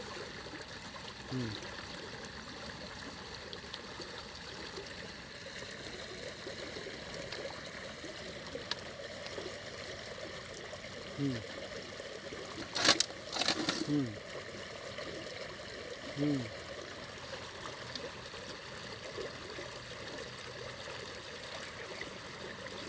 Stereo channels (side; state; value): both; identical; correlation 1.00